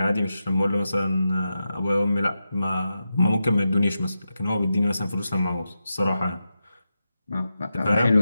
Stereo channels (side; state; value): both; inverted; correlation -0.89